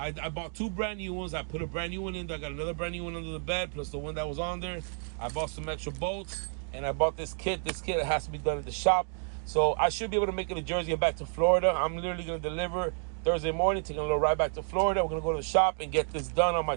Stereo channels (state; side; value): silent; left; 57 dB below the other